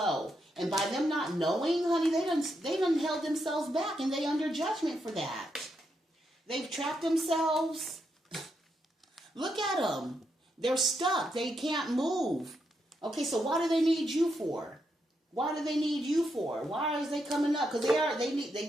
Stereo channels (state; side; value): normal; both; correlation 0.81